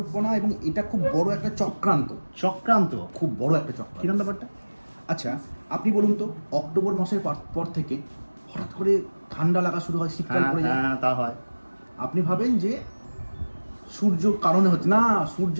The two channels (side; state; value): both; inverted; correlation -1.00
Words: এবং এটা খুব বড় একটা চক্রান্ত। খুব বড় একটা চক্রান্ত। কিরকম ব্যাপারটা? আচ্ছা আপনি বলুন তো, অক্টোবর মাসের পর থেকে হঠাৎ করে ঠান্ডা লাগা শুরু হয়, শীতকাল পড়ে যায়। হ্যাঁ, তা হয়। আপনি ভাবেন যে সূর্য কারণে হচ্ছে না, সূর্য